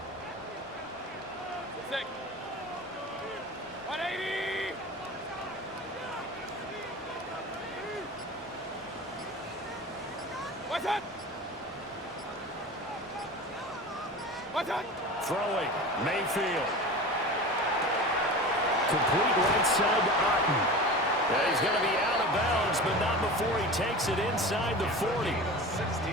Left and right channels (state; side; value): normal; both; correlation 0.33